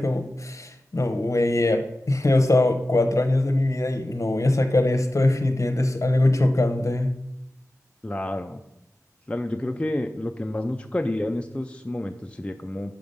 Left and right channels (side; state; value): both; normal; correlation 0.94